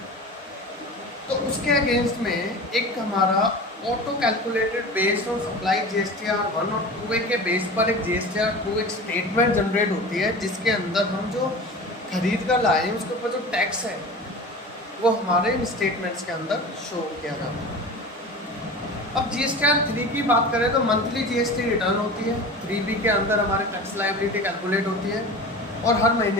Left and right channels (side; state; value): both; normal; correlation 0.34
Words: तो उसके अगेंस्ट में एक हमारा auto calculated based on supply GSTR1 और 2A के बेस पर एक GSTR2 एक स्टेटमेंट जनरेट होती है, जिसके अंदर हम जो खरीद कर लाए हैं उसके ऊपर जो टैक्स है वो हमारे इन स्टेटमेंट्स के अंदर शो किया जाता है। अब GSTR3 की बात करें तो मंथली GST रिटर्न होती है, 3B के अंदर हमारे टैक्स लायबिलिटी कैलकुलेट होती है और हर